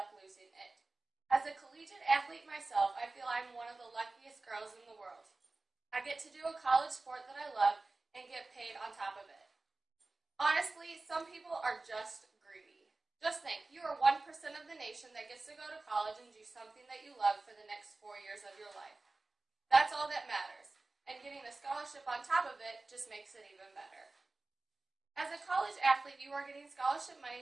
losing it. As a collegiate athlete myself, I feel I'm one of the luckiest girls in the world. I get to do a college sport that I love and get paid on top of it. Honestly, some people are just greedy. Just think, you are 1% of the nation that gets to go to college and do something that you love for the next 4 years of your life. That's all that matters, and getting a scholarship on top of it just makes it even better. As a college athlete, you are getting scholarship money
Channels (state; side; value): quieter; left; 3.3 dB